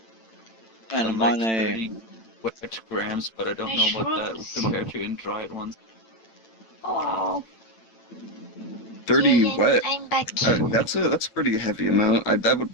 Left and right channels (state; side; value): late; right; 8.9 ms